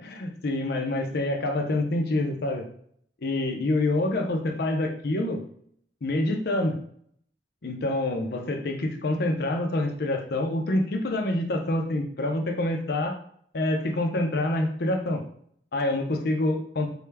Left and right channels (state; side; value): normal; both; correlation 0.54